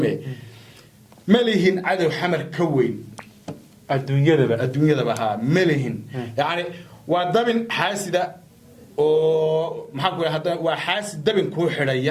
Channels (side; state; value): both; identical; correlation 1.00